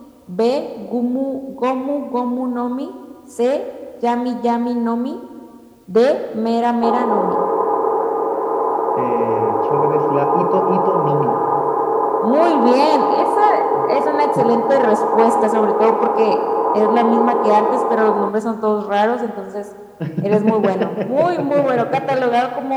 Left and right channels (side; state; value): both; identical; correlation 1.00